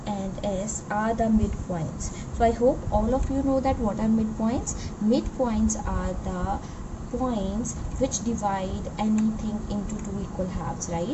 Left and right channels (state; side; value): identical; both; correlation 1.00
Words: and S are the midpoints. So I hope all of you know that what are midpoints. Midpoints are the points which divide anything into two equal halves,